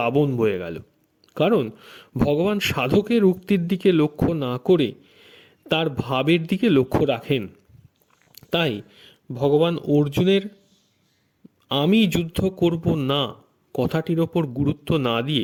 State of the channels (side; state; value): both; identical; correlation 1.00